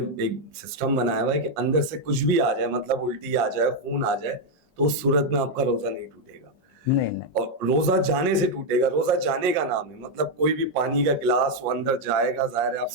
ایک سسٹم بنایا ہوا ہے کہ اندر سے کچھ بھی آ جائے, مطلب الٹی آ جائے, خون آ جائے, تو اس صورت میں آپ کا روزہ نہیں ٹوٹے گا. نہیں, اور روزہ جانے سے ٹوٹے گا. روزہ جانے کا نام ہے, مطلب کوئی بھی پانی کا گلاس وہ اندر جائے گا, ظاہر ہے آپ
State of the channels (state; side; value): normal; both; correlation 0.01